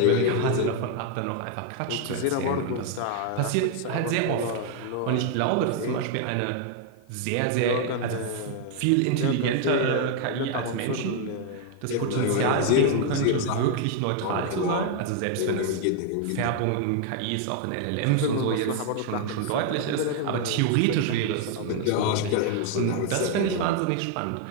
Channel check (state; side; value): different; both; correlation 0.00